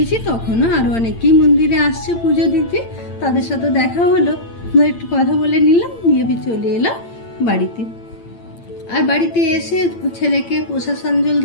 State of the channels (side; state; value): right; late; 8.8 ms